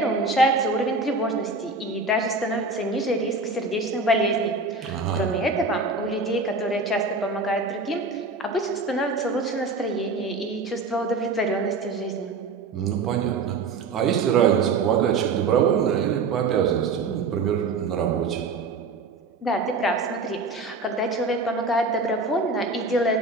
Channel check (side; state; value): left; quieter; 3.8 dB